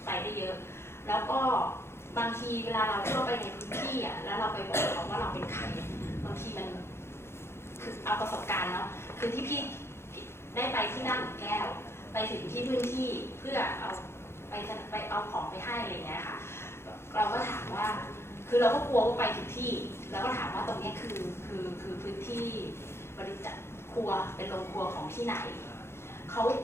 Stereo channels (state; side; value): late; right; 0.12 ms